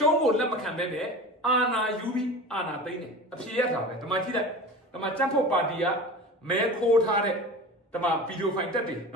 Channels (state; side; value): normal; both; correlation 0.33